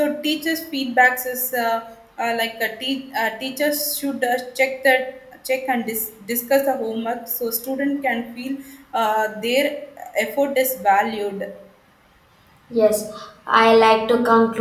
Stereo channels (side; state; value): both; identical; correlation 1.00